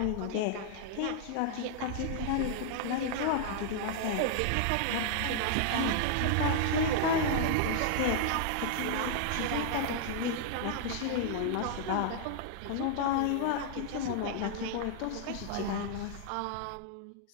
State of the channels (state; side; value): different; both; correlation -0.01